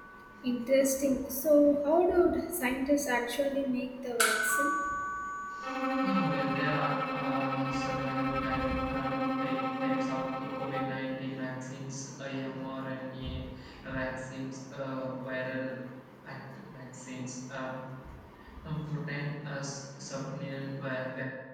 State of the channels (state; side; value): identical; both; correlation 1.00